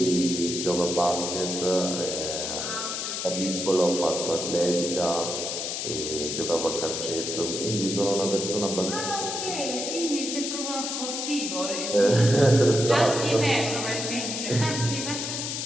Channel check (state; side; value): noise; left; hiss, 3 dB below the sound